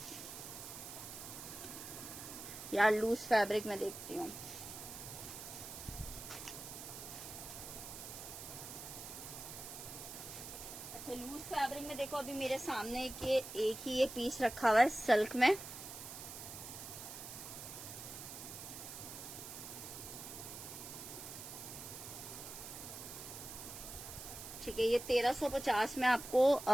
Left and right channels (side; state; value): right; noise; hiss, 10 dB below the sound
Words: यार, लूज फैब्रिक में देखती हूँ। अच्छा, लूज फैब्रिक में देखो, अभी मेरे सामने एक ही ये पीस रखा हुआ है सिल्क में। ठीक है, ये 1350 में आपको